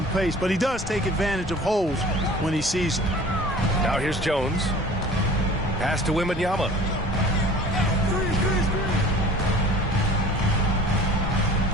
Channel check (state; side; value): normal; both; correlation 0.45